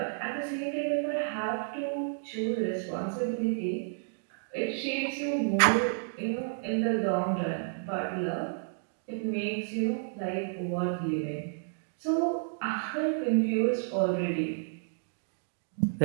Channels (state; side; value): silent; left; digital silence